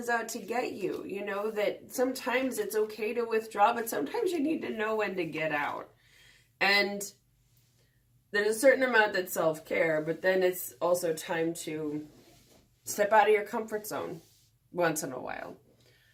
out to get you. That sometimes it's okay to withdraw, but sometimes you need to know when to get out. And there's a certain amount that's self-care, but then it's also time to step out of your comfort zone once in a while.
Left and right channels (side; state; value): both; identical; correlation 1.00